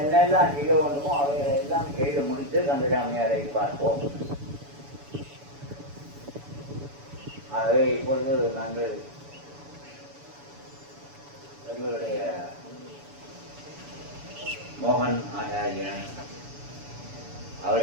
செய்ய வேண்டுமோ அவைகளெல்லாம் செய்து முடித்து கந்தசாமியாரை பார்ப்போம். ஆகவே இப்பொழுது நாங்கள் எங்களுடைய மோகன் ஆச்சாரியன்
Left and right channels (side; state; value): left; late; 7.0 ms